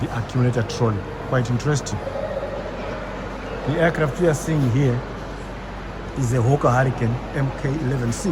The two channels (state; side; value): identical; both; correlation 1.00